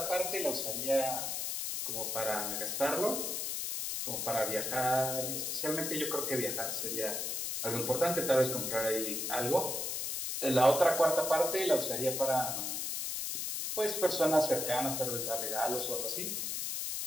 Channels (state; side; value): noise; left; hiss, 2 dB below the sound